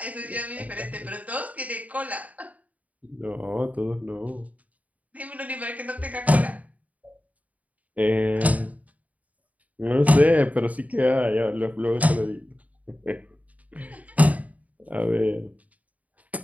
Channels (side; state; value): left; late; 0.071 ms